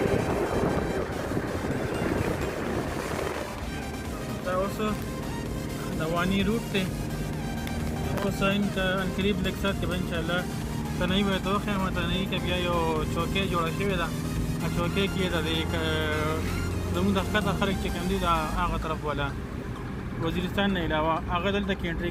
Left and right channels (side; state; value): both; identical; correlation 1.00